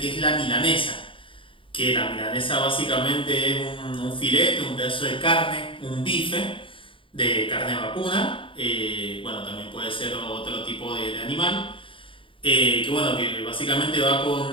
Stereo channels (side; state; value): right; late; 0.25 ms